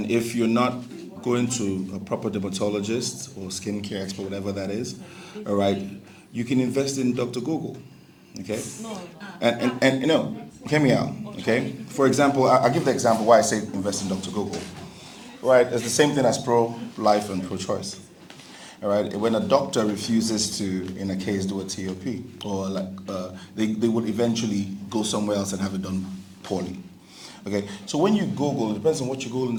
if you're not going to a proper dermatologist or skincare expert, whatever that is, all right, you can invest in Dr. Google, okay? And hear me out, okay? For example, I'll give the example why I say invest in Dr. Google, right? It's the same thing as pro-life and pro-choice. All right. When a doctor refuses to, in a case, do a TOP, or they would eventually go somewhere else and have it done poorly. Okay. So when you Google, it depends on what you Google in the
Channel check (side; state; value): both; identical; correlation 1.00